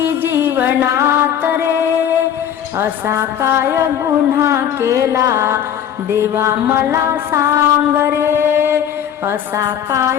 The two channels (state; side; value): quieter; right; 9.5 dB